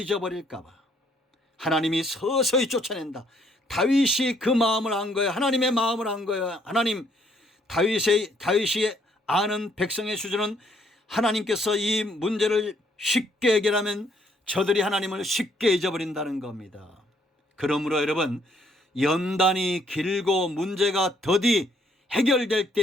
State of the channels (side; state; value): both; normal; correlation 0.67